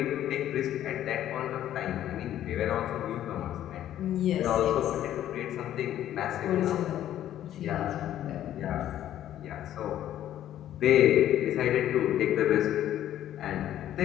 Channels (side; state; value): right; quieter; 11.9 dB